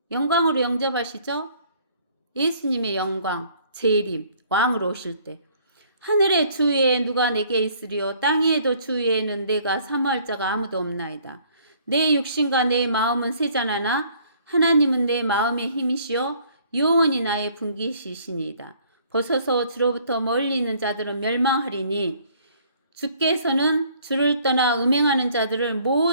영광으로 영접하시죠? 예수님의 영광, 재림, 왕으로 오실 때. 하늘의 주 위에 누가 내게 있으리요 땅 위에도 주 위에는 내가 사모할 자가 아무도 없나이다. 내 육신과 내 마음은 세잔하나 하나님은 내 마음의 힘이시요 영원히 나의 분기시시니이다. 벗어서 주로부터 멀리 있는 자들은 멸망하리니 주께서는 주를 떠나 음행하는 자들을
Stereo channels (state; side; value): inverted; both; correlation -0.60